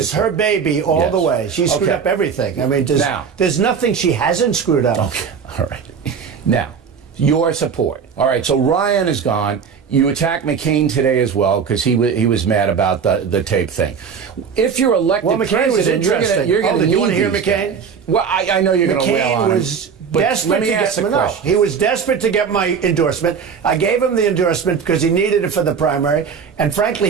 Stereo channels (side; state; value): left; quieter; 6.5 dB